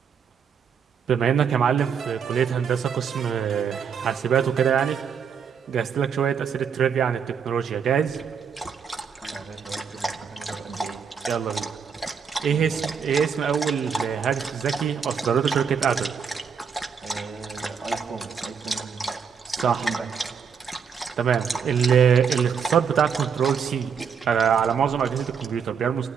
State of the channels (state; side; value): quieter; left; 6.8 dB